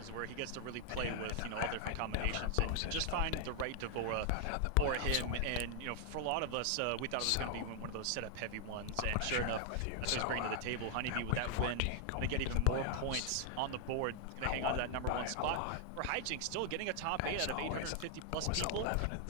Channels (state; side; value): different; both; correlation 0.00